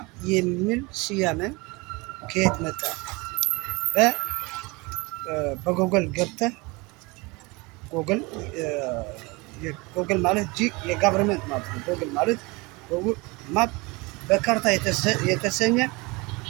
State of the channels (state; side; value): quieter; left; 25.6 dB